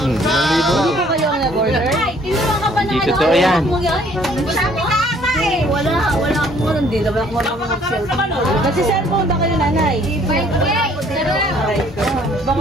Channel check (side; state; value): both; normal; correlation 0.59